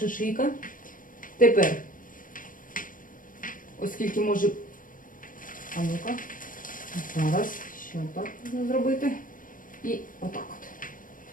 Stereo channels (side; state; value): right; late; 0.39 ms